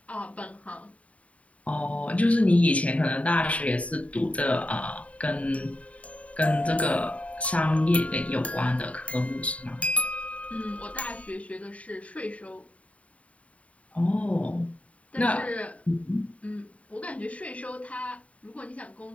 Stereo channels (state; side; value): late; right; 0.066 ms